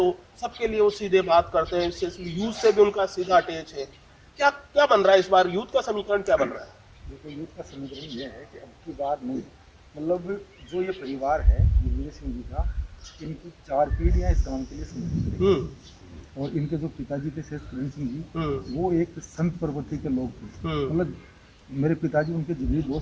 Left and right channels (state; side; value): identical; both; correlation 1.00